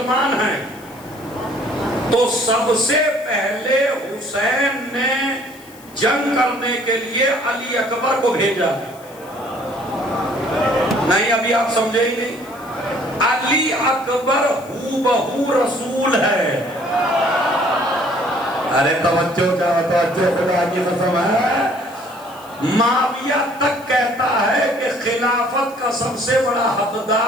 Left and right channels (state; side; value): noise; left; hiss, 23 dB below the sound